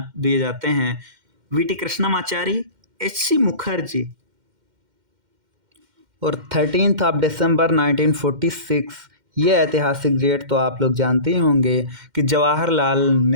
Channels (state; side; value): late; left; 2.1 ms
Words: दिए जाते हैं, वी.टी. कृष्णमाचारी, एच.सी. मुखर्जी। और 13 दिसंबर 1946 ये ऐतिहासिक डेट तो आप लोग जानते ही होंगे कि जवाहरलाल